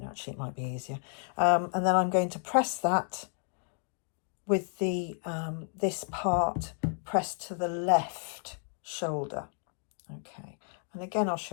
actually, it might be easier. And then I'm going to press that with the this part pressed to the left shoulder. Okay, and again I'll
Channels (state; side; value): silent; right; 57 dB below the other